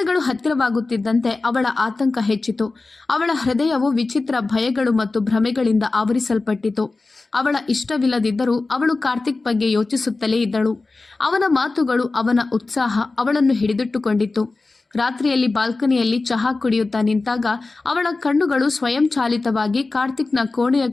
ಹತ್ತಿರವಾಗುತ್ತಿದ್ದಂತೆ ಅವಳ ಆತಂಕ ಹೆಚ್ಚಿತು. ಅವಳ ಹೃದಯವು ವಿಚಿತ್ರ ಭಯಗಳು ಮತ್ತು ಭ್ರಮೆಗಳಿಂದ ಆವರಿಸಲ್ಪಟ್ಟಿತು. ಅವಳ ಇಷ್ಟವಿಲ್ಲದಿದ್ದರೂ ಅವಳು ಕಾರ್ತಿಕ್ ಬಗ್ಗೆ ಯೋಚಿಸುತ್ತಲೇ ಇದ್ದಳು. ಅವನ ಮಾತುಗಳು, ಅವನ ಉತ್ಸಾಹ ಅವಳನ್ನು ಹಿಡಿದಿಟ್ಟುಕೊಂಡಿತ್ತು. ರಾತ್ರಿಯಲ್ಲಿ ಬಾಲ್ಕನಿಯಲ್ಲಿ ಚಹಾ ಕುಡಿಯುತ್ತಾ ನಿಂತಾಗ ಅವಳ ಕಣ್ಣುಗಳು ಸ್ವಯಂಚಾಲಿತವಾಗಿ ಕಾರ್ತಿಕ್ನ ಕೋಣೆಯ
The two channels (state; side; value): quieter; right; 3.5 dB